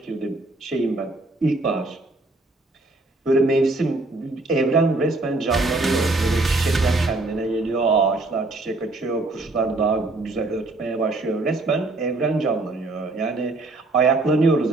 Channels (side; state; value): left; quieter; 3.1 dB